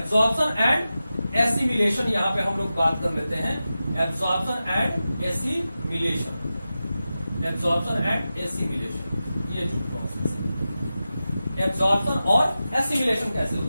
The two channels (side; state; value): both; inverted; correlation -0.93